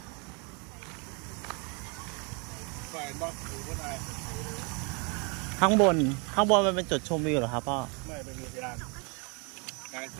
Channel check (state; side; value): quieter; left; 33.4 dB